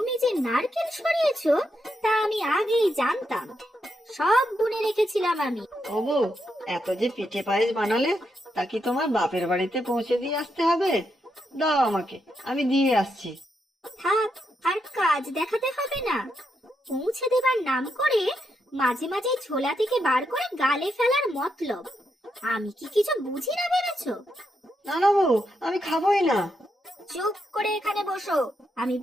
যে নারকেল সরিয়েছো তা আমি আগেই জানতাম, সব গুনে রেখেছিলাম আমি। ও বউ, এত যে পিঠে পায়েস বানালে, তা কি তোমার বাপের বাড়িতে পৌঁছে দিয়ে আসতে হবে? দাও আমাকে, আমি দিয়ে আসছি। থাক, আর কাজ দেখাতে হবে না। পৌঁছে দেবার নাম করে মাঝে মাঝে ঝোলা থেকে বার করে গালে ফেলার মতলব। আমি কি কিছু বুঝি না ভেবেছো? না না বউ, আমি খাবোই না। চুপ করে এখানে বসো, আমি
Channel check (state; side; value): normal; both; correlation 0.82